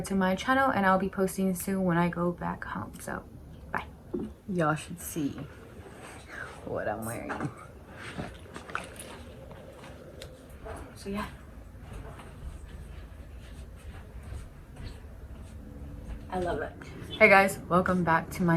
to my channel, and I'll be posting soon when I go back home. So bye. Y'all should see what I'm wearing. So yeah. I love it. Hey guys, welcome back to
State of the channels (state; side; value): identical; both; correlation 1.00